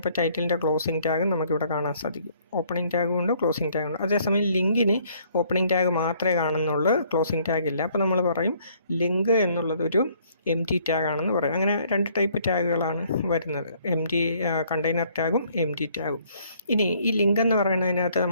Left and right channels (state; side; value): inverted; both; correlation -0.63